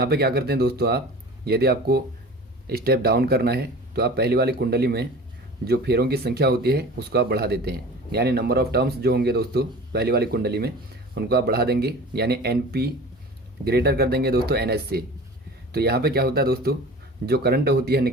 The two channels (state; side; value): normal; both; correlation 0.39